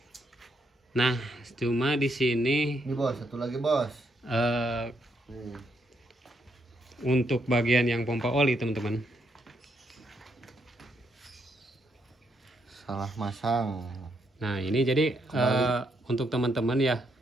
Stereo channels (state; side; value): normal; both; correlation 0.76